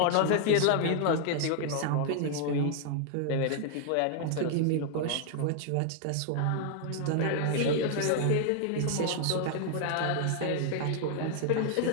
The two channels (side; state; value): both; different; correlation 0.00